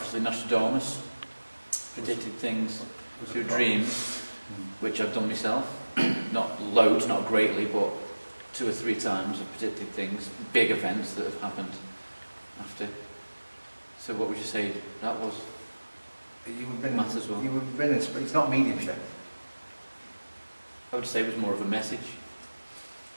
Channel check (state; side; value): inverted; both; correlation -1.00